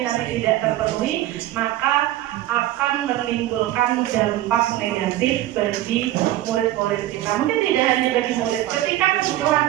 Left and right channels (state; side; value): quieter; left; 14.7 dB